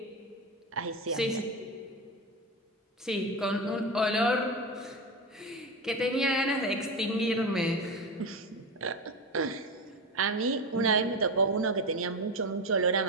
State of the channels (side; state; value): both; normal; correlation 0.19